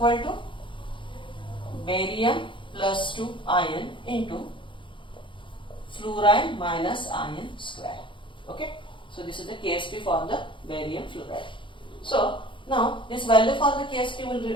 to barium plus 2 iron into fluoride minus iron square. Okay. So this is the KSP for the barium fluoride. So now this value for the KSP will be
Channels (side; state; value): right; late; 0.24 ms